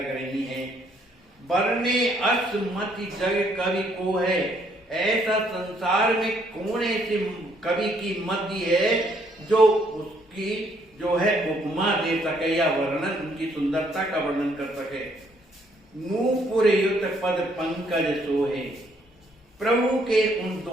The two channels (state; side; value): normal; both; correlation 0.68